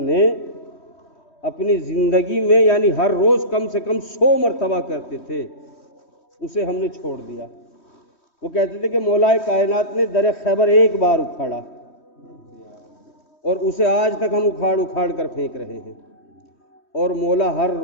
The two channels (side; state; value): right; late; 3.1 ms